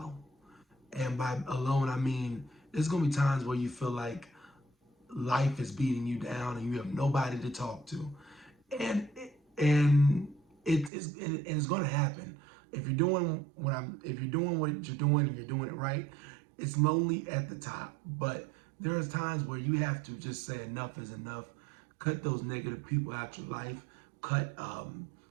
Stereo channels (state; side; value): drops out; left; at 10.9 s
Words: And by alone, I mean there's gonna be times where you feel like life is beating you down and you have nobody to talk to, and and it's gonna happen if you're doing if you're doing what you're doing and you're doing it right. It's lonely at the top, but there's times where you have to just say enough is enough. Cut those negative people out your life. Cut